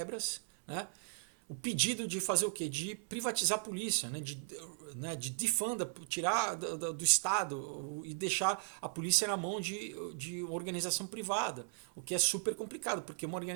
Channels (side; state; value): left; silent; 53 dB below the other